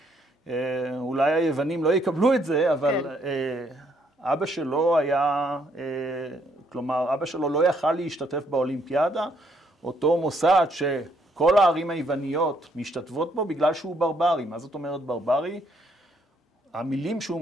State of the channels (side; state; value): both; normal; correlation 0.70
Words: אולי היוונים לא יקבלו את זה, אבל אבא שלו היה, כלומר, אבא שלו לא יכל להשתתף באולימפיאדה, אותו מוסד שכל הערים היווניות משתתפות בו בגלל שהוא ברברי. מה זאת אומרת ברברי? המילים שהוא